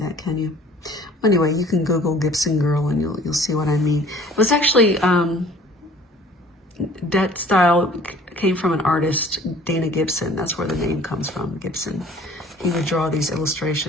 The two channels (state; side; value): normal; both; correlation 0.51